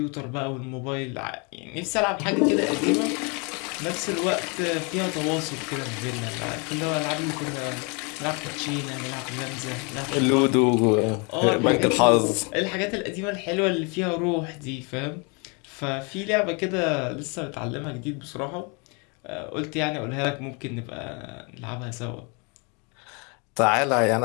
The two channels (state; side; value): quieter; right; 32.6 dB